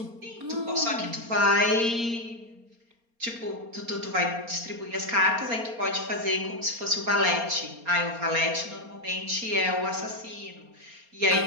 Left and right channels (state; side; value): late; left; 4.3 ms